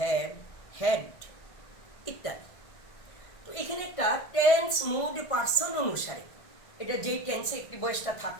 had ইত্যাদি। তো এখানে একটা টেন্স, মুড, পার্সন অনুসারে, এটা যেই টেন্সে অ্যাক্টিভ ভয়েসটা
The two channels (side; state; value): right; late; 1.6 ms